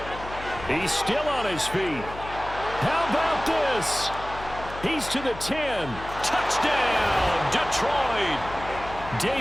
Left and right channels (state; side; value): noise; left; hum, 13 dB below the sound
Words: He's still on his feet. How about this? He's to the 10. Touchdown, Detroit.